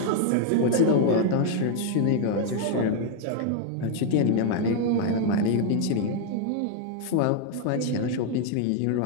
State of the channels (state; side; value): different; both; correlation 0.00